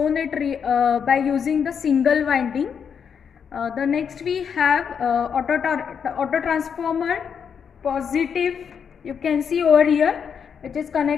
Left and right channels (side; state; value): right; quieter; 7.1 dB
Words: it by using the single winding. The next we have auto transformer positive, you can see over here, which is